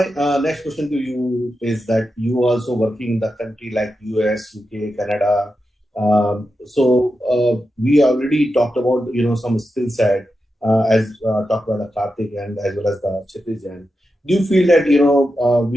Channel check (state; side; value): normal; both; correlation 0.89